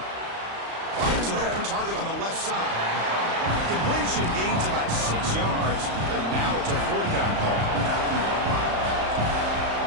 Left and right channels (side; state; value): left; late; 35 ms